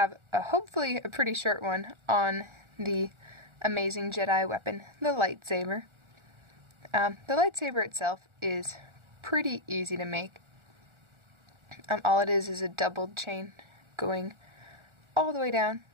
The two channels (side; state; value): left; late; 1.4 ms